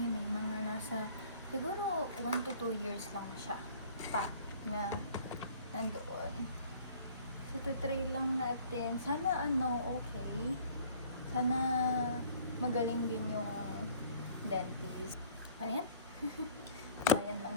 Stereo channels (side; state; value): both; inverted; correlation -0.52